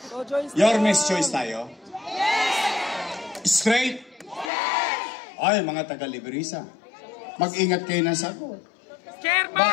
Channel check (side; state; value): right; drops out; at 4.5 s